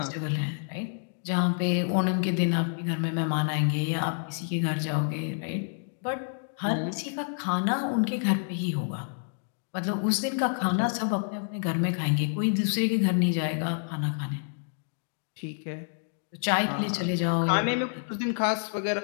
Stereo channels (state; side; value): silent; right; digital silence